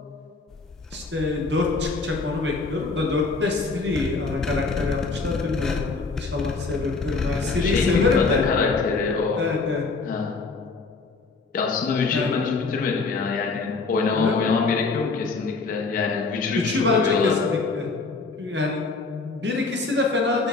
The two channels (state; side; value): quieter; right; 4.1 dB